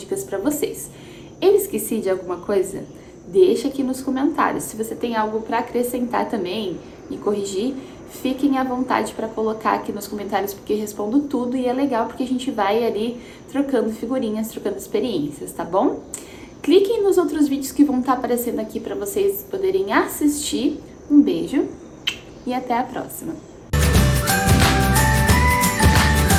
para vocês. Eu esqueci de alguma coisa? Deixa aqui nos comentários. Se você tem algo para acrescentar também e corrigir, fiquem à vontade para colocar aqui nos comentários, porque eu respondo tudo e é legal porque a gente vai ali trocando figurinhas, trocando experiências, tá bom? Cliquem nos outros vídeos que vão estar aparecendo aqui para vocês poderem assistir. Um beijo e até a próxima!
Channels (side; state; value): both; identical; correlation 1.00